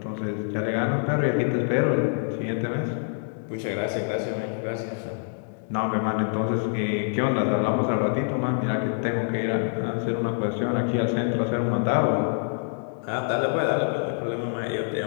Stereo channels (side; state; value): right; silent; 61 dB below the other